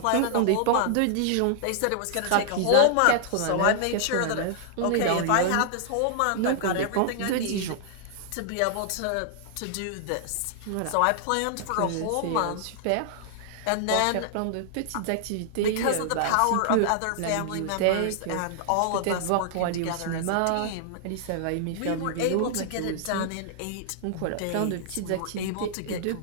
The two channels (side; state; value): both; different; correlation -0.01